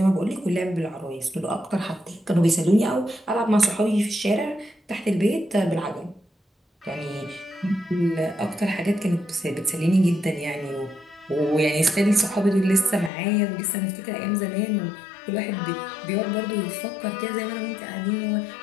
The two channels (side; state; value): right; drops out; at 13.1 s